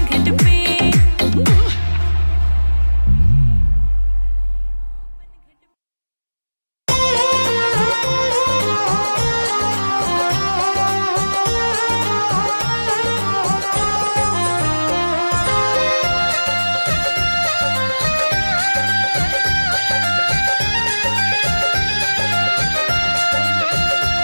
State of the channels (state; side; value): inverted; both; correlation -1.00